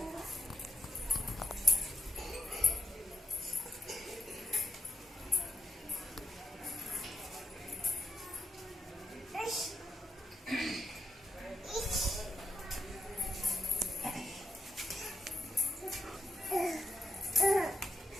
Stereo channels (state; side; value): normal; both; correlation 0.80